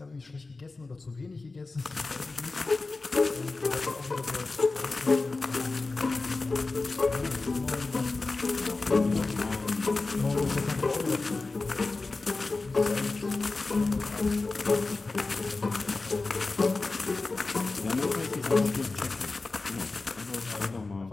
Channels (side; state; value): right; quieter; 3.6 dB